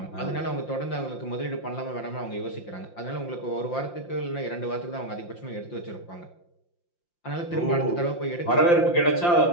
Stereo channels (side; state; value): right; late; 5.8 ms